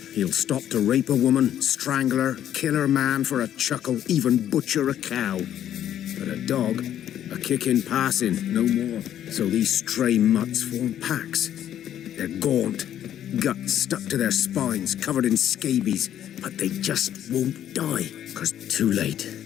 He'll stop to rape a woman, strangle her, kill her man for a chuckle, even butcher a cow. But a dog, a kick in passing, no more. So these stray mutts form packs. They're gaunt, guts stuck to their spines, covered in scabies, but they just won't die, 'cause too late.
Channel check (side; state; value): right; quieter; 10.8 dB